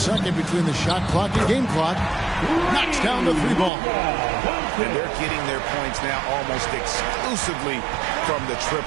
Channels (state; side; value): drops out; left; at 3.7 s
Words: between the shot clock and game clock. Knocks down the three ball. And they're getting their points now almost exclusively from the